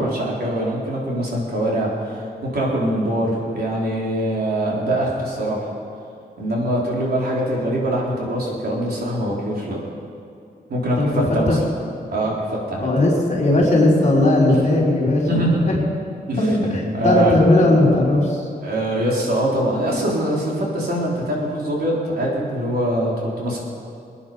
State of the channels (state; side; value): normal; both; correlation 0.62